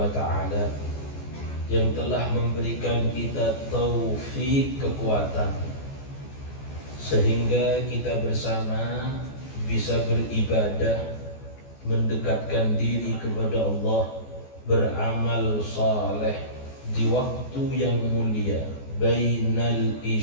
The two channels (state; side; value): late; right; 14 ms